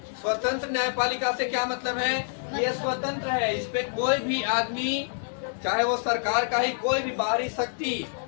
स्वतंत्र न्यायपालिका से क्या मतलब है? ये स्वतंत्र है, इस पे कोई भी आदमी, चाहे वो सरकार का ही कोई भी बाहरी शक्ति,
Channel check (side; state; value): right; silent; 60 dB below the other